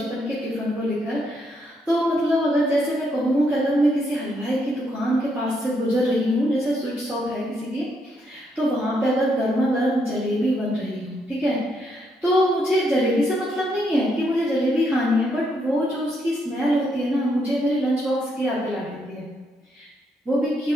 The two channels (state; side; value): normal; both; correlation 0.76